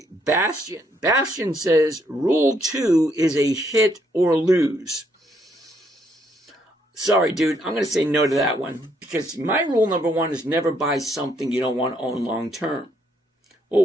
Bastion. Bastion says Rule 2 is a hit or lose. Sorry, dude, I'm going to say no to that one because my rule number 1 is never buy something you don't want to own long term.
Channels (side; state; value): both; normal; correlation 0.72